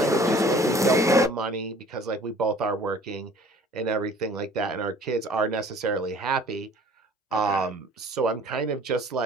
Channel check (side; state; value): both; normal; correlation 0.51